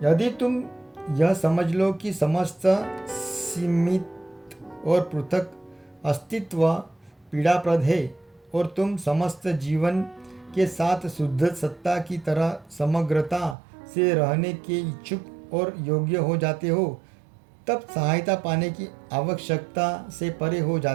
यदि तुम यह समझ लो कि समस्त सीमित और पृथक अस्तित्व पीड़ाप्रद है, और तुम समस्त जीवन के साथ शुद्ध सत्ता की तरह समग्रता से रहने के इच्छुक और योग्य हो जाते हो, तब सहायता पाने की आवश्यकता से परे हो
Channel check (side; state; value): left; drops out; at 13.6 s